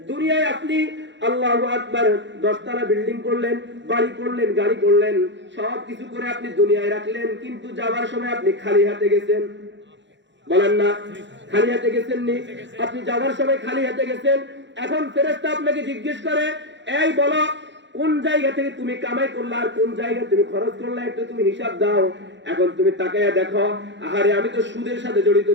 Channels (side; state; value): left; late; 0.53 ms